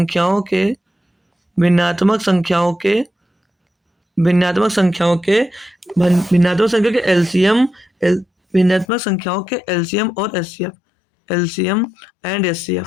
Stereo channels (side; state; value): right; drops out; at 8.8 s